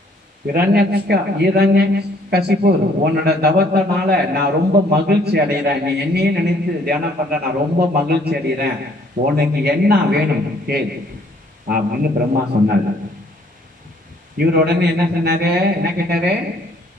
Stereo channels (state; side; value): normal; both; correlation 0.62